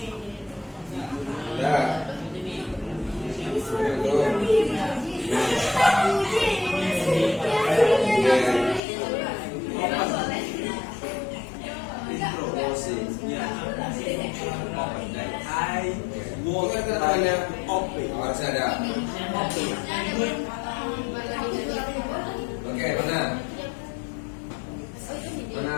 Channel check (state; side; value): drops out; right; at 8.8 s